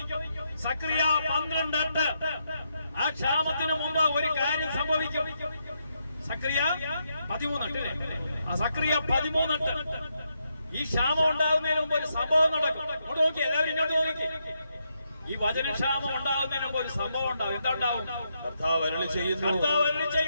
സക്രിയ 12:8. ആ ക്ഷാമത്തിന് മുമ്പ് ഒരു കാര്യം സംഭവിക്കും. സക്രിയ 13:8. ആ സക്രിയ 13:8. ഈ ക്ഷാമം ഉണ്ടാകുന്നതിന് മുമ്പ് ഒരു സംഭവം നടക്കും. ഇങ്ങോട്ട് നോക്കി, എല്ലാവരും ഇങ്ങോട്ട് നോക്കി. ഈ വചനക്ഷാമം ഉണ്ടാകുന്നതിന് മുമ്പ് ഒരു സംഭവം ഉണ്ടാകും. എന്താ ഉണ്ടാവും? കർത്താവ് അരുളി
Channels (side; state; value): both; inverted; correlation -0.80